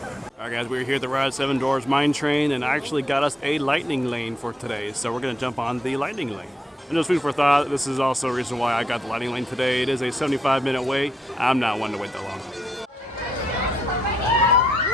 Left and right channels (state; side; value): normal; both; correlation 0.78